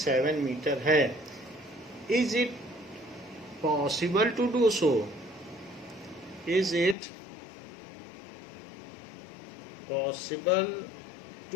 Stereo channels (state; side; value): drops out; right; at 7.0 s